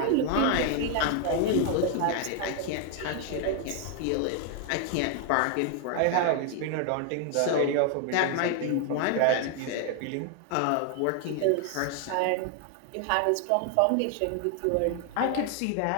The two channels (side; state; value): both; different; correlation 0.00